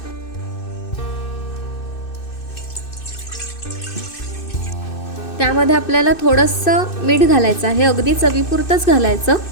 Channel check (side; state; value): right; late; 2.6 ms